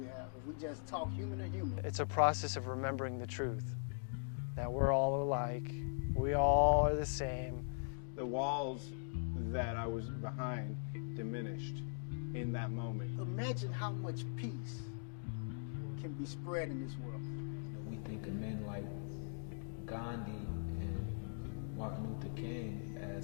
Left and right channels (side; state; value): right; silent; digital silence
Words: have. If we just talk human to human. It's a process of remembering the truth, that we're all alike, we all are the same. The walls that I was behind diminished in that moment. Imagine how much peace can be spread in this world. You know, we think of men like Gandhi and Martin Luther King